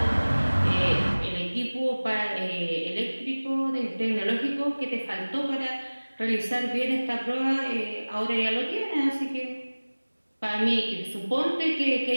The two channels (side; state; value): both; inverted; correlation -1.00